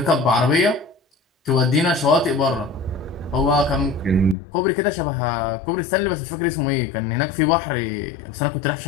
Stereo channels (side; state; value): right; drops out; at 4.4 s